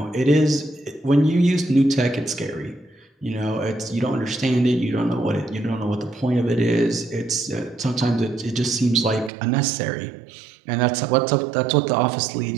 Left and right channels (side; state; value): left; drops out; at 9.3 s